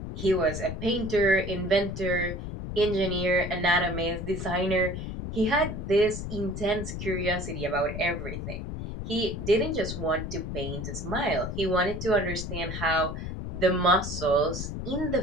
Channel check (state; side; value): noise; left; rumble, 6 dB below the sound